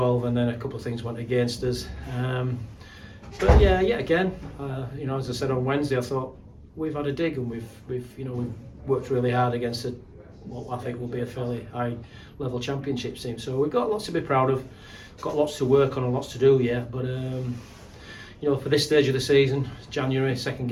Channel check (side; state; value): both; identical; correlation 1.00